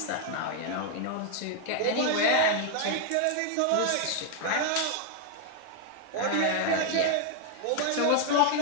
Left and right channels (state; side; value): different; both; correlation 0.00